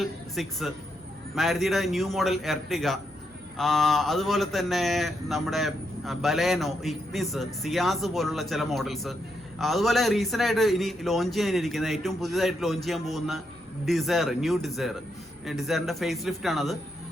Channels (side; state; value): both; normal; correlation 0.80